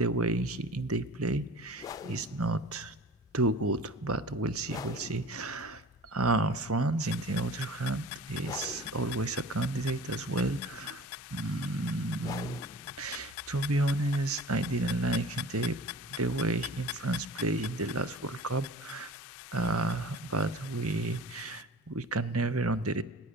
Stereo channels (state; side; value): normal; both; correlation 0.41